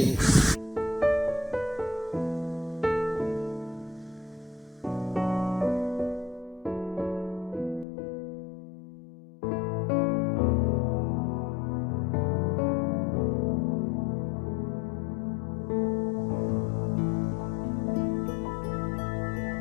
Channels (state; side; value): drops out; right; at 7.9 s